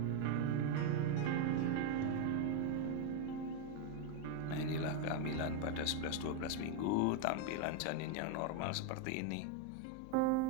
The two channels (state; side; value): different; both; correlation 0.01